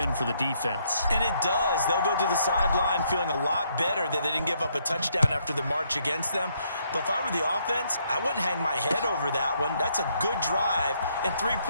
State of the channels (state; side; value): inverted; both; correlation -0.72